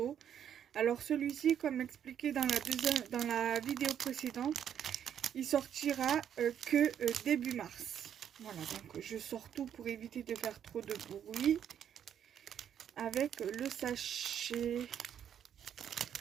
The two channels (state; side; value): quieter; left; 9.2 dB